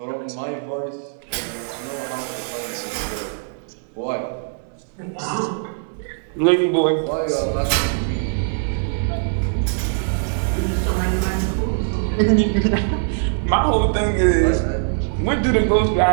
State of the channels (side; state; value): left; silent; 65 dB below the other